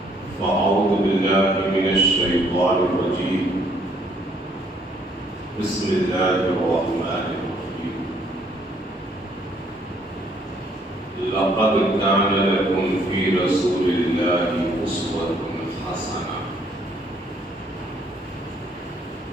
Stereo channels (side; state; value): both; normal; correlation 0.66